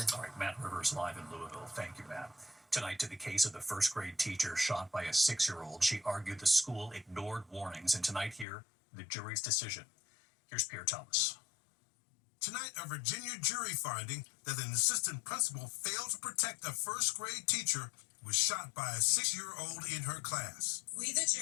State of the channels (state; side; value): drops out; right; at 8.5 s